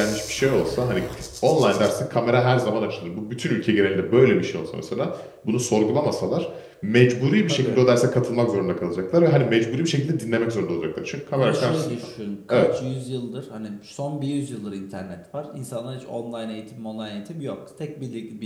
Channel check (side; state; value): both; identical; correlation 1.00